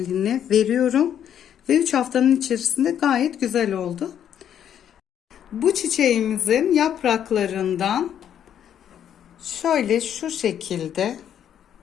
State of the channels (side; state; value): right; quieter; 9.6 dB